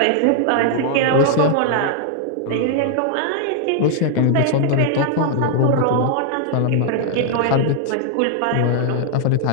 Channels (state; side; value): different; both; correlation -0.01